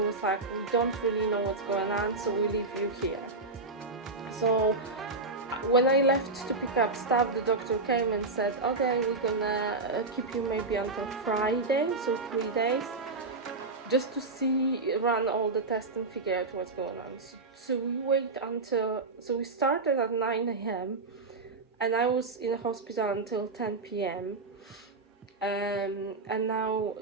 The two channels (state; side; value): quieter; left; 3.5 dB